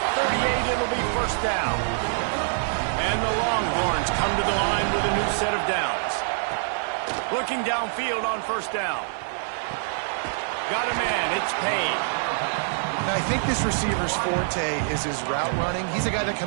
38. It'll be first down. And the Longhorns come to the line with a new set of downs. Looking downfield on first down. Got a man. It's Payne. Now, I think this receiver's forte is his route running. He's a guy that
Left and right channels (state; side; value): silent; left; digital silence